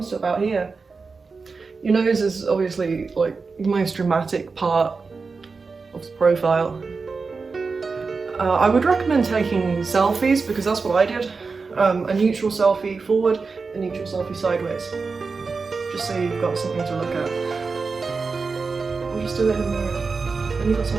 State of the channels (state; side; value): quieter; left; 4.5 dB